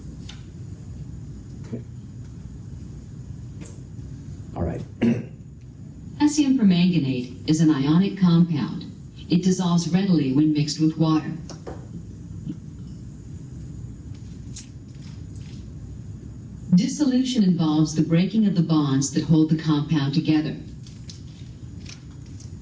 Okay. All right. Potassium permanganate is an ionic compound. It dissolves readily when mixed with water. Dissolution involves the breaking of the bonds that hold the compound together.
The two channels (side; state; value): both; identical; correlation 1.00